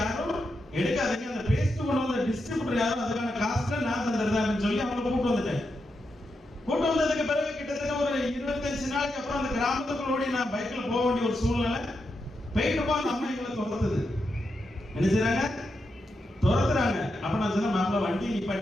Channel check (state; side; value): normal; both; correlation 0.86